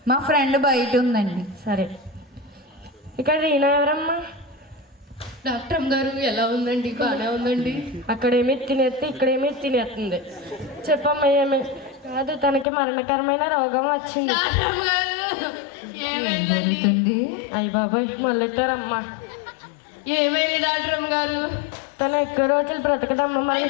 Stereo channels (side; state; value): right; drops out; at 12.7 s